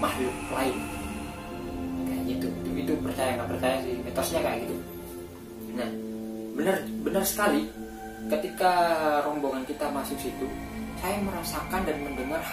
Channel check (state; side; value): identical; both; correlation 1.00